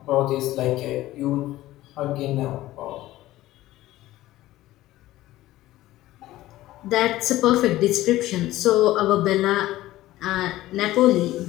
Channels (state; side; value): quieter; right; 15.9 dB